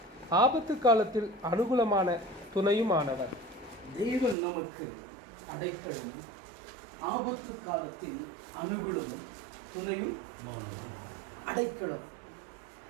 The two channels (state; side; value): drops out; left; at 4.4 s